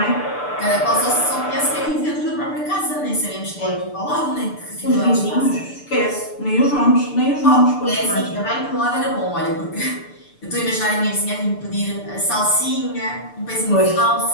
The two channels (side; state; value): right; late; 6.8 ms